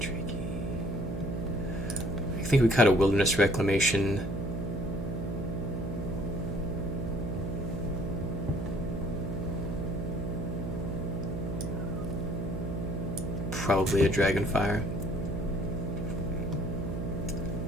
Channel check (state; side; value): noise; right; hum, 3 dB below the sound